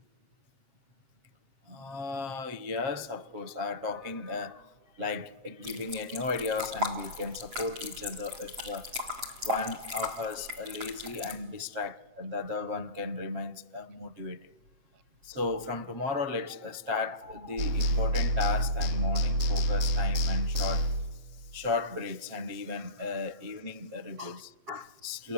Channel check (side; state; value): left; late; 7.8 ms